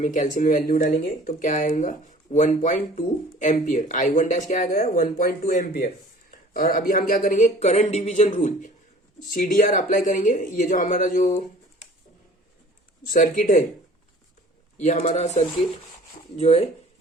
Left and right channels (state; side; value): normal; both; correlation 0.48